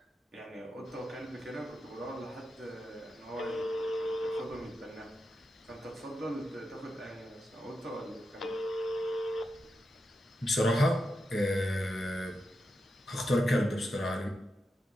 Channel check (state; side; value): normal; both; correlation 0.87